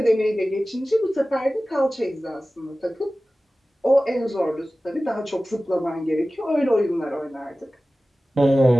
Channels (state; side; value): normal; both; correlation 0.96